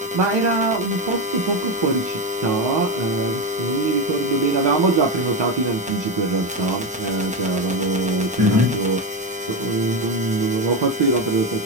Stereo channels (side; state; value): both; normal; correlation 0.14